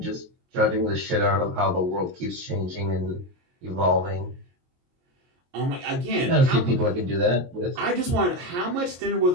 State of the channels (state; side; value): late; left; 22 ms